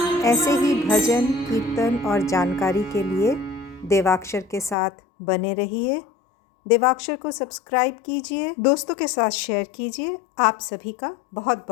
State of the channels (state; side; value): drops out; right; at 4.8 s